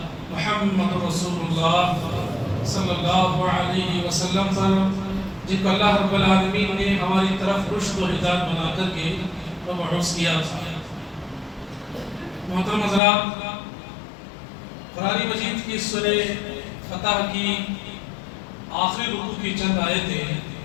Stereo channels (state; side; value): drops out; right; at 13.0 s